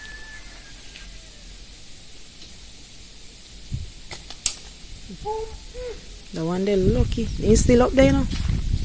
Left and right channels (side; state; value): both; identical; correlation 1.00